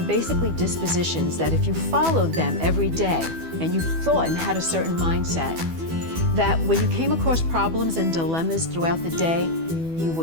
dispositions that if you followed them every day and you thought and had a certain mindset, that when you came across problems and dilemmas throughout the day, you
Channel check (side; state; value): left; late; 12 ms